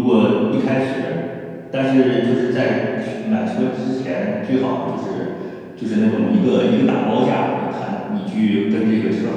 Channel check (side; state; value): both; identical; correlation 1.00